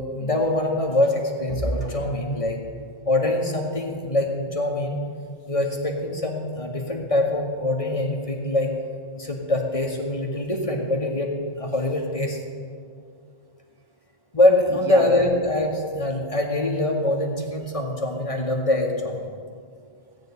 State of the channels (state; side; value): late; right; 1.6 ms